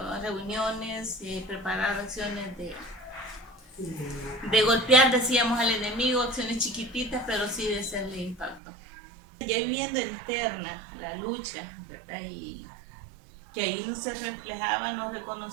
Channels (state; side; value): drops out; left; at 8.6 s